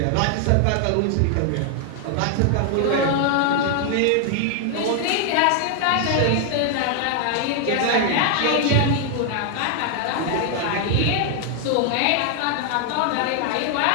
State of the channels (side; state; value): both; different; correlation 0.00